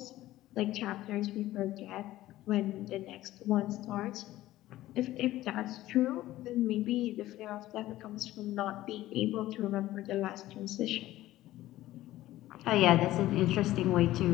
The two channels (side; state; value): right; quieter; 15.5 dB